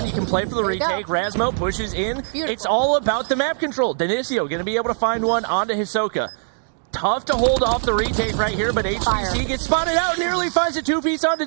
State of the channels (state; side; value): silent; left; digital silence